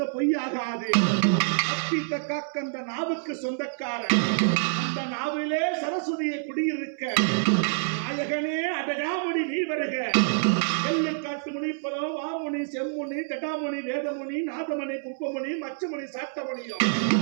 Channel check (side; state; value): left; silent; 60 dB below the other